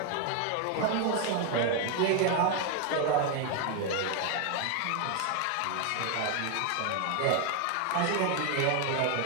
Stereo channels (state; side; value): different; both; correlation 0.01